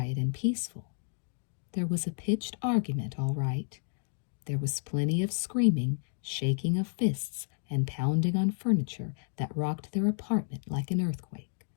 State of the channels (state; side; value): silent; right; digital silence